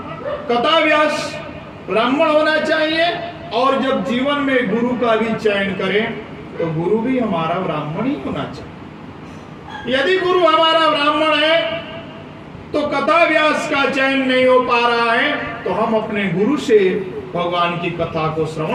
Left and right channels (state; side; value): identical; both; correlation 1.00